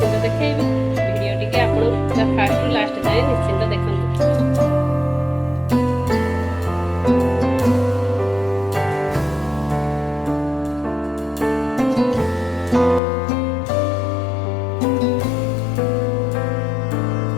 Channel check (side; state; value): right; drops out; at 13.0 s